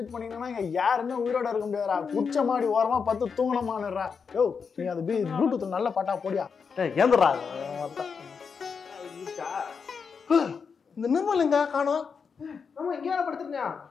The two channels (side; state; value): right; quieter; 5.8 dB